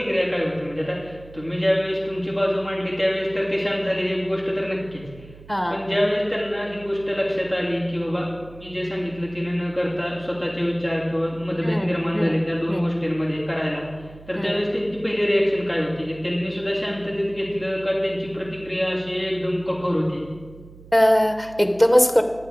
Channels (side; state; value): right; noise; hum, 20 dB below the sound